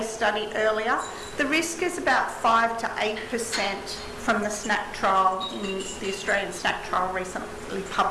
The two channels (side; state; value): both; identical; correlation 1.00